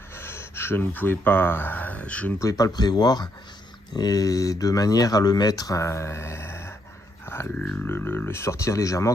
je ne pouvais pas le prévoir, et de manière à le mettre, à le sortir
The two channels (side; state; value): both; normal; correlation 0.75